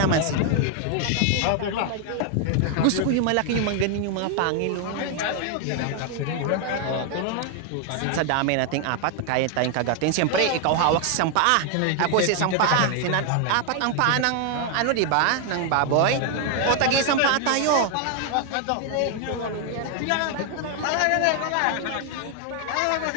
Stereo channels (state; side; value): different; both; correlation 0.00